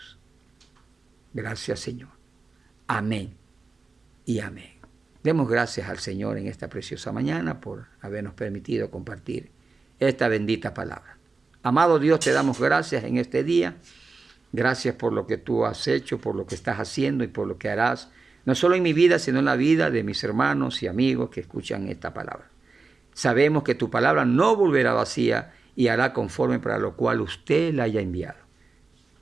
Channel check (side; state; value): left; quieter; 4.1 dB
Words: Gracias, Señor. Amén y amén. Demos gracias al Señor en esta preciosa mañana por habernos permitido compartir esta bendita palabra. Amado Dios, te damos gracias en este día. Gracias por lo que tú has hecho, por lo que estás haciendo y por lo que harás, no solo en mi vida, sino en la vida de mis hermanos y amigos que escuchan esta palabra. Sabemos que tu palabra no volverá vacía y hará conforme para lo cual usted la haya enviado.